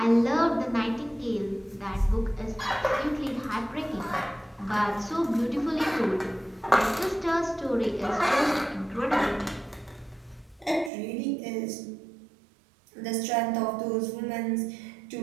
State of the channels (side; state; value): left; drops out; at 10.9 s